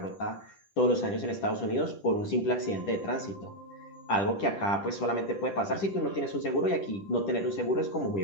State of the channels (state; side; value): late; right; 10 ms